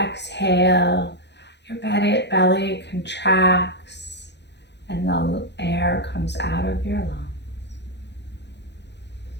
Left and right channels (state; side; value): late; right; 0.50 ms